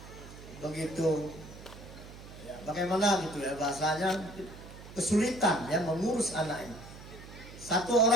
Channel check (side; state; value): right; noise; hum, 16 dB below the sound